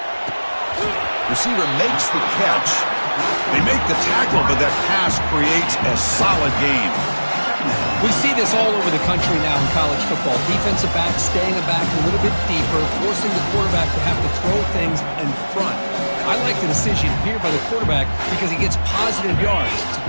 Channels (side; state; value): both; inverted; correlation -1.00